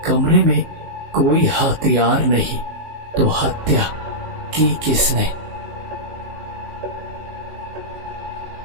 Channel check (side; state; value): left; late; 19 ms